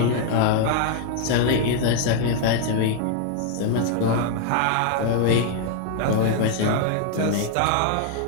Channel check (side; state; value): both; different; correlation 0.00